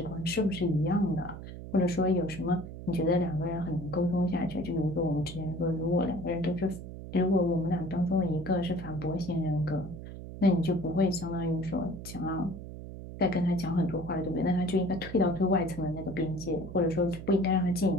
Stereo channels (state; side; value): noise; right; hum, 11 dB below the sound